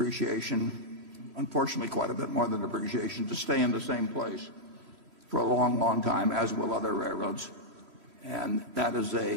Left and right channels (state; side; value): late; left; 3.1 ms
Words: unfortunately quite a bit more than depreciation, to stay in the same place for a long, long time, as will other railroads. And that's